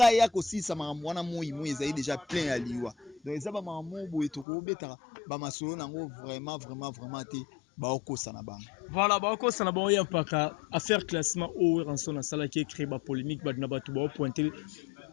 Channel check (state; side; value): drops out; right; at 4.5 s